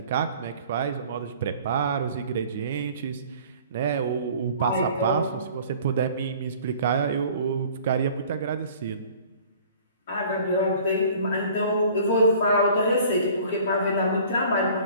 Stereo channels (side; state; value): both; inverted; correlation -0.50